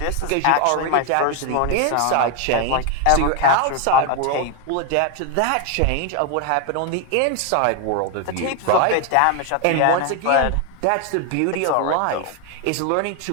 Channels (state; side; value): different; both; correlation 0.01